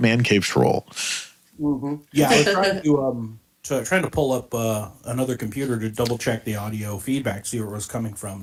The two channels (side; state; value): both; identical; correlation 1.00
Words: cave troll. Mm-hmm. Yeah, I was trying to pull up another computer to double check the audio feedback, see where it was coming from.